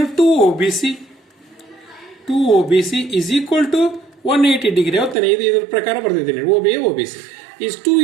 2OBC is equal to 180 degree. ಹೌದಾನೆ? ಇದ್ರ ಪ್ರಕಾರ ಬರ್ತಿದ್ದೀನಿ. OBC is 2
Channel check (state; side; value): drops out; left; at 5.2 s